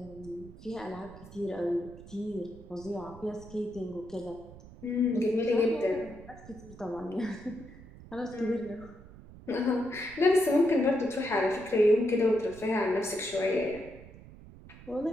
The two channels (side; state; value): right; noise; rumble, 18 dB below the sound